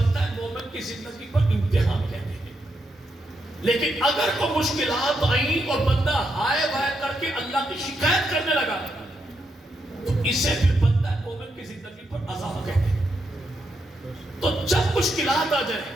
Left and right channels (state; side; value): normal; both; correlation 0.81